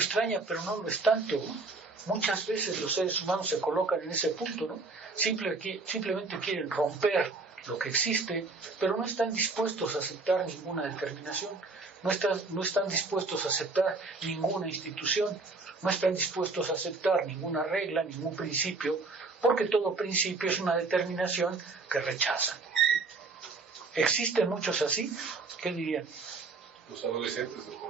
pero no lo es tanto, ¿no? muchas veces los seres humanos se colocan en ese punto, ¿no? Simplemente quieren romper lo que existe, pero no están dispuestos a aceptar ninguna determinación, no están dispuestos a aceptar ninguna institución, no están dispuestos a aceptar ninguna regla, ningún principio, porque todo principio es una determinación que rechazan. ¿Existen muchos así? ¿Qué dirían? Los adolescentes.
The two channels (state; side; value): quieter; left; 3.8 dB